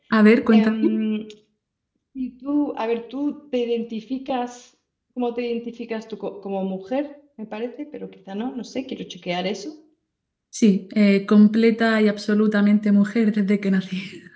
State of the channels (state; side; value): identical; both; correlation 1.00